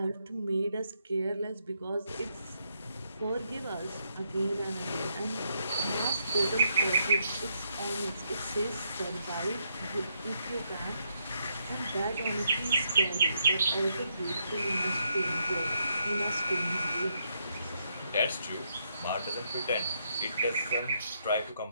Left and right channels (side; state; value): both; inverted; correlation -0.78